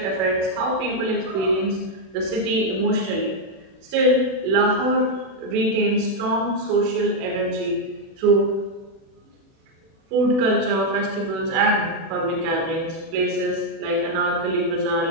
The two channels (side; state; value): left; late; 36 ms